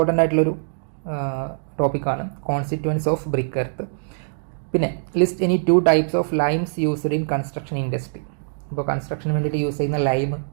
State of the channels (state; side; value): silent; left; digital silence